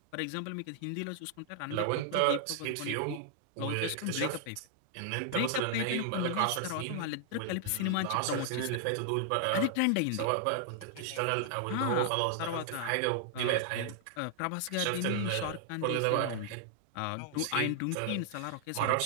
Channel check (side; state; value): both; different; correlation 0.00